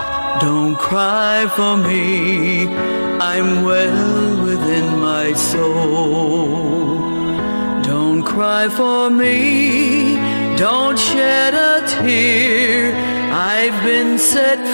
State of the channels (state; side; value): inverted; both; correlation -1.00